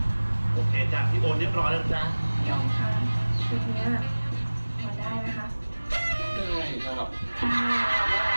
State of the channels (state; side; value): inverted; both; correlation -1.00